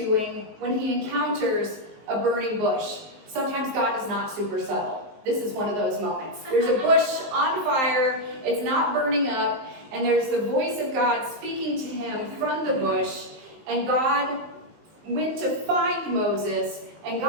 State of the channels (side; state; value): left; late; 19 ms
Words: when he encounters a burning bush. Sometimes God is not super subtle. This is one of those moments. There's a bush on fire. It's not burning up. And there's the voice of God speaking to him from the bush. And God went to find Moses. And